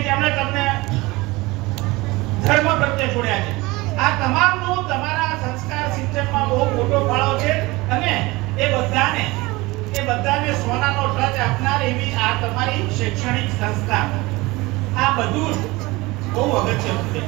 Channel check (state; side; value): quieter; left; 21.9 dB